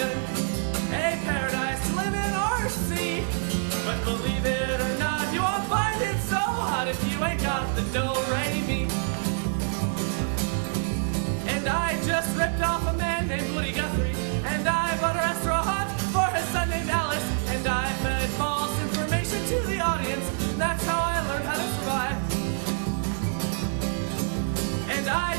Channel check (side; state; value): left; silent; 60 dB below the other